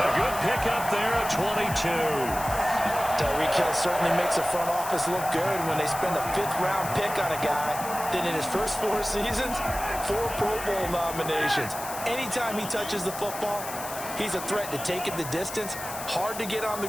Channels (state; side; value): noise; left; hiss, 10 dB below the sound